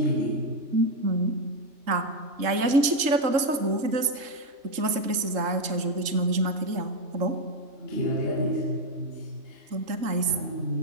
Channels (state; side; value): late; left; 3.7 ms